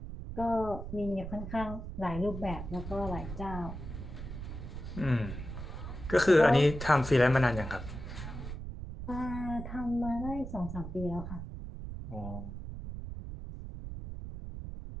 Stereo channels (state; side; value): noise; right; rumble, 8 dB below the sound